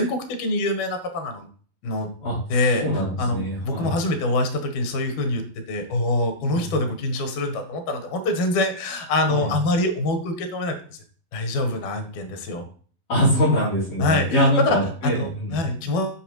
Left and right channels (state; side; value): late; right; 12 ms